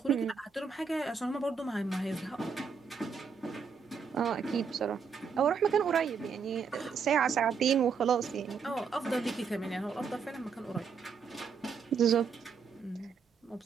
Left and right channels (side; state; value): left; quieter; 5.9 dB